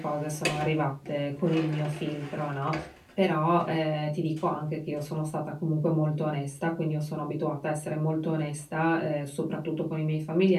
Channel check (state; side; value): identical; both; correlation 1.00